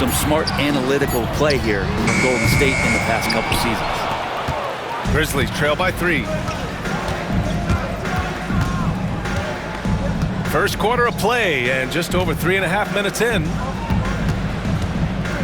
smart analytical play here from Golden State in the past couple seasons. Grizzlies trail by 3. First quarter of play and just over 3.5 minutes in.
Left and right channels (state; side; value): identical; both; correlation 1.00